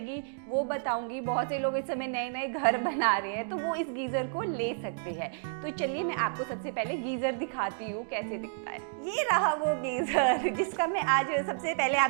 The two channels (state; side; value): silent; left; digital silence